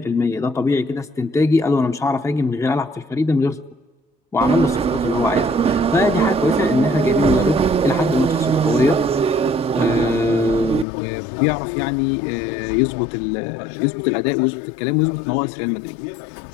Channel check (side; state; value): right; drops out; at 10.9 s